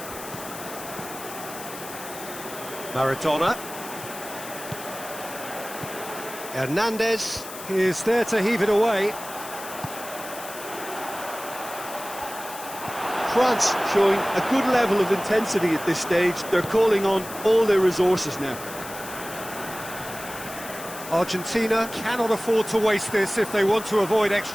Maradona. Hernandez is there to heave it away. France showing a good level of intensity at this stage. They're calling on all their resources now. Argentina cannot afford to waste this if they want to avoid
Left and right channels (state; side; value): noise; left; hiss, 12 dB below the sound